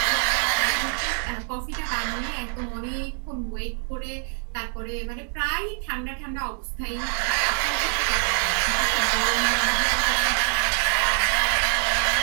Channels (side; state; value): left; silent; 55 dB below the other